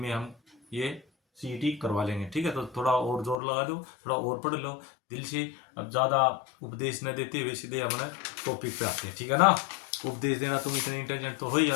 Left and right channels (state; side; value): drops out; right; at 3.4 s